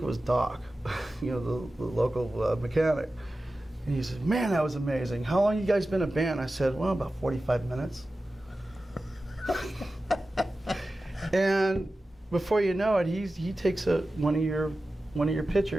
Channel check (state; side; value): normal; both; correlation 0.94